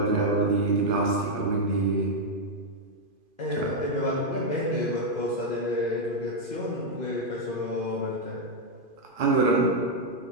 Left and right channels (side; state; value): left; late; 2.5 ms